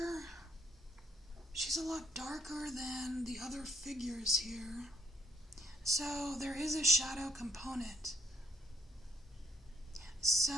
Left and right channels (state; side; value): normal; both; correlation 0.69